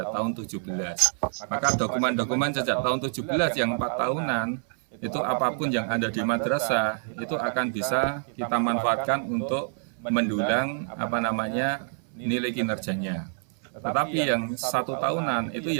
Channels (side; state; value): left; silent; 60 dB below the other